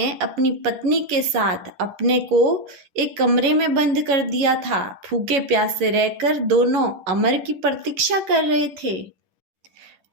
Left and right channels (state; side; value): late; left; 10 ms